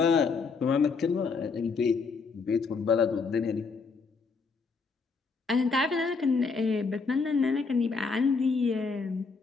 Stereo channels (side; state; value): right; quieter; 4.8 dB